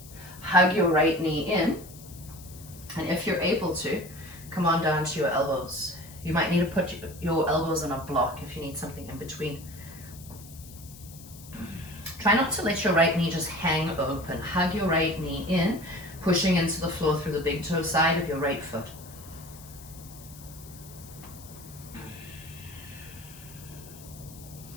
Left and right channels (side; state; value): left; noise; hiss, 18 dB below the sound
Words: Hug your right knee in. And if you're able to, come on down to your elbows. You might need to put your elbows on a block if you need something in between. Try not to let your right knee just hang open. Hug your right knee in, pushing into the floor through the big toe side of your right foot.